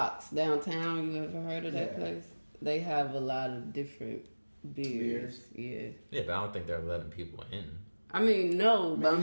downtown. You ever heard of that place? They have a lot of different beers. Yeah. Yeah, but I don't think they're letting people in. I mean, no, but I'm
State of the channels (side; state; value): both; inverted; correlation -1.00